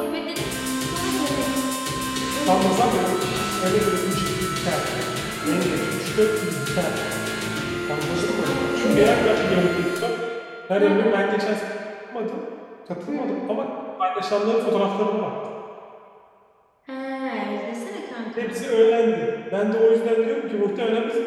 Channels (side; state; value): both; identical; correlation 1.00